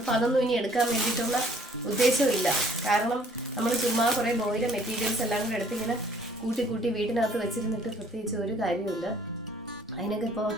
അതൊന്നും ഇനി എടുക്കാൻ വേണ്ടിയിട്ടുള്ള ഉദ്ദേശമില്ല. കാരണം നമ്മൾ ചുമ്മാ കുറേ ബോയിലെ മെറ്റീരിയൽസ് എല്ലാം കൂടെ എടുത്തിങ്ങനെ കൂട്ടി വീട്ടിനകത്ത് വെച്ചിരുന്നിട്ട് പ്രത്യേകിച്ച് ഒരു കാര്യമില്ല. അതിനൊക്കെ ഇപ്പോൾ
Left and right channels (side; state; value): both; normal; correlation 0.59